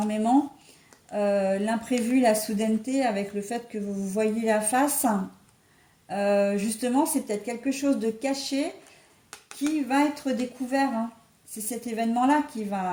l'imprévu, la soudaineté, avec le fait que vous vous voyez la face, justement, c'est peut-être quelque chose de caché qui va être découvert, hein. C'est cet événement-là qui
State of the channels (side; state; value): both; identical; correlation 1.00